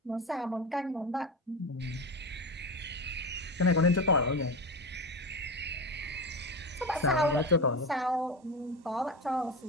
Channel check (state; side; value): normal; both; correlation 0.22